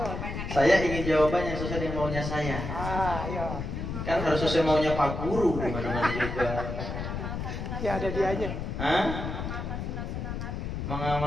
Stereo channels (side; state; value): left; noise; rumble, 4 dB below the sound